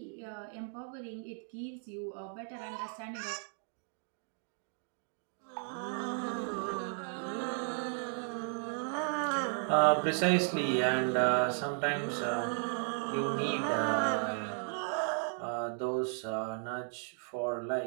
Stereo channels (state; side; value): silent; left; 54 dB below the other